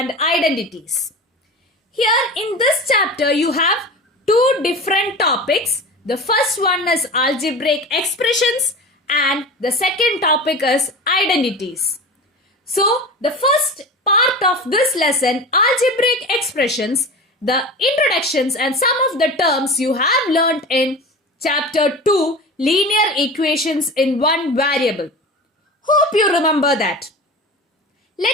Identities. Here in this chapter you have two different topics. The first one is algebraic expressions and the second topic is identities. So the first part of this lesson, algebraic expressions, the introductions and some of the terms you have learnt in chapter 2, linear equations in one variable. Hope you remember that.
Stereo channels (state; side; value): normal; both; correlation 0.32